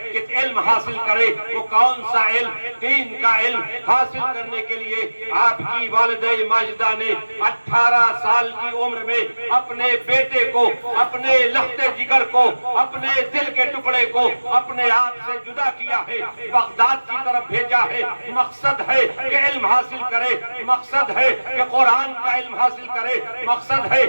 کہ علم حاصل کرے۔ وہ کون سا علم؟ دین کا علم حاصل کرنے کے لیے آپ کی والدہ ماجدہ نے 18 سال کی عمر میں اپنے بیٹے کو، اپنے لخت جگر کو، اپنے دل کے ٹکڑے کو اپنے آپ سے جدا کیا ہے، بغداد کی طرف بھیجا ہے۔ مقصد ہے کہ علم حاصل کرے، مقصد ہے کہ قرآن کا علم حاصل کرے، مقصد ہے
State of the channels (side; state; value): both; inverted; correlation -1.00